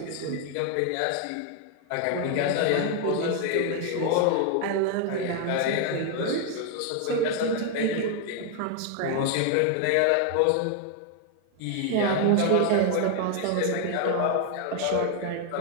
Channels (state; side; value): different; both; correlation 0.00